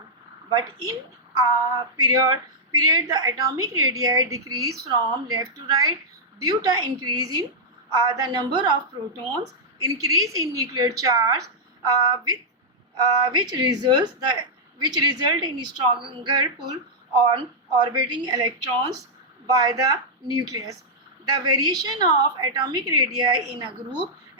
But in period, the atomic radii decrease from left to right due to increase in the number of protons, increase in nuclear charge, which result in stronger pull on orbiting electrons by the nucleus. The variation of atomic radii in a group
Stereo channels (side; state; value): both; normal; correlation -0.07